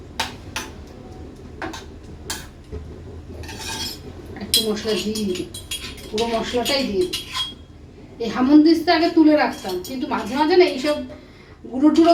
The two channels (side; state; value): both; identical; correlation 1.00